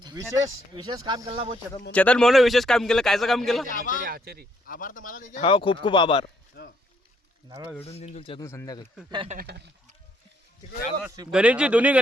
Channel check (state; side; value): normal; both; correlation 0.70